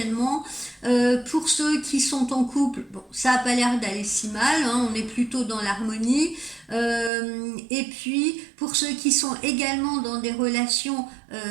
Pour ceux qui sont en couple, bon, ça n'a pas l'air d'aller si mal, hein, on est plutôt dans l'harmonie. Et puis pour ceux qui sont également dans des relations,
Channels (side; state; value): left; drops out; at 7.1 s